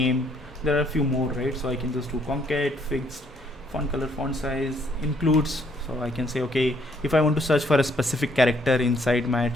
There are a few more, right? So I can just do concat, fixed, font color, font size, includes. So I can say okay, if I want to search for a specific character inside my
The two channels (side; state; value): both; normal; correlation 0.67